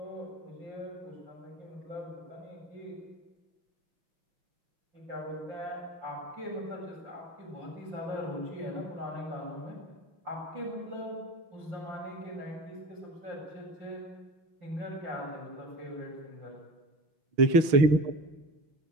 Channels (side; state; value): left; late; 6.4 ms